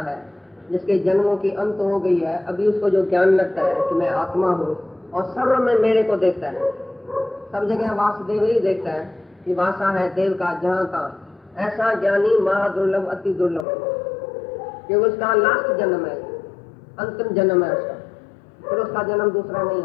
है, जिसके जन्मों की अंत हो गई है, अभी उसको जो ज्ञान लगता है कि मैं आत्मा हूँ और सर्व में मेरे को देखता है। सब जगह वासुदेव ही देखता है कि वासा है देव का जहाँ का। ऐसा ज्ञानी महादुर्लभ, अति दुर्लभ, क्योंकि उसका लास्ट जन्म है, अंतिम जन्म है उसका, फिर उसका जन्म दूसरा नहीं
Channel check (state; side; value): drops out; right; at 13.7 s